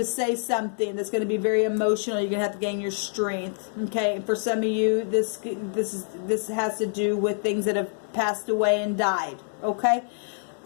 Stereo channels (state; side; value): silent; right; digital silence